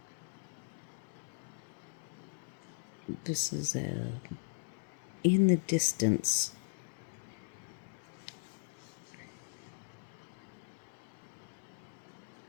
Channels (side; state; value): right; silent; digital silence